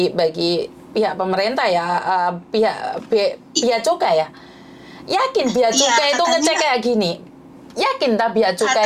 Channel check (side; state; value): both; identical; correlation 1.00